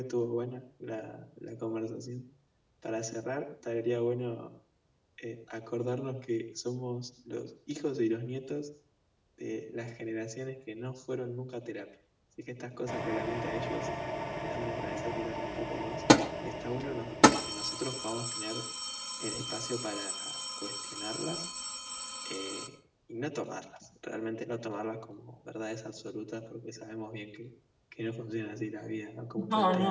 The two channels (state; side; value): identical; both; correlation 1.00